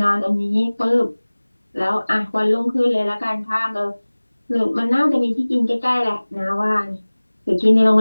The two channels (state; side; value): inverted; both; correlation -1.00